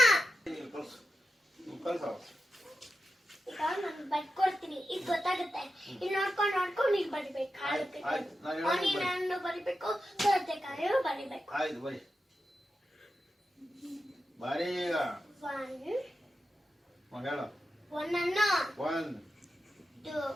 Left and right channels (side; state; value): both; normal; correlation 0.90